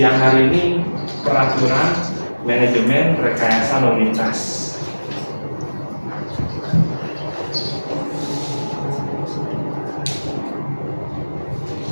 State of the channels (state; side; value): inverted; both; correlation -1.00